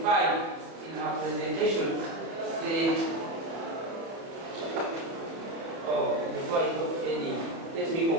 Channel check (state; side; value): late; left; 30 ms